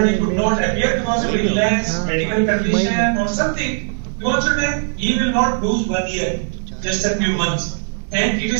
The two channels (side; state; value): left; silent; 63 dB below the other